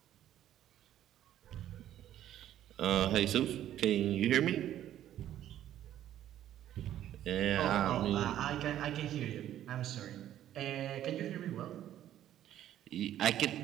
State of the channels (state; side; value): quieter; left; 11.8 dB